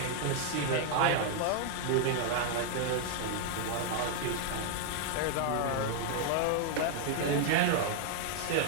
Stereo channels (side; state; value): both; different; correlation 0.00